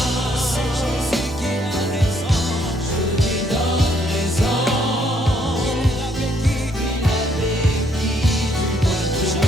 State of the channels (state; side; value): normal; both; correlation 0.69